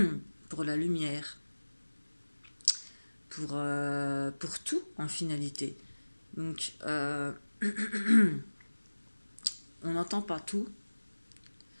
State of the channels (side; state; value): both; inverted; correlation -1.00